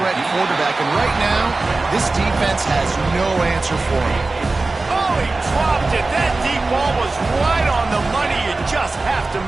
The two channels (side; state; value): left; quieter; 3.4 dB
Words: quarterback, and right now, this defense has no answer for him. Oh, he dropped it. That deep ball was right on the money. You just have to